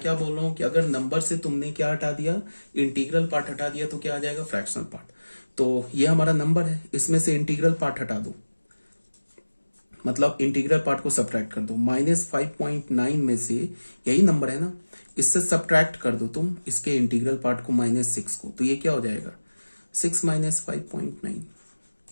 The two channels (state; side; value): inverted; both; correlation -1.00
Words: बोल रहा हूं कि अगर नंबर से तुमने क्या हटा दिया, इंटीग्रल पार्ट हटा दिया, तो क्या आ जाएगा, फ्रैक्शनल पार्ट। तो ये हमारा नंबर है, इसमें से इंटीग्रल पार्ट हटा दो, मतलब इंटीग्रल पार्ट को सब्ट्रैक्ट कर दो, -5.9 में से, यही नंबर है ना, इससे सब्ट्रैक्ट कर दो तुम इसके इंटीग्रल पार्ट को -6 को, तो ये क्या हो जाएगा 6 माइनस 5.9,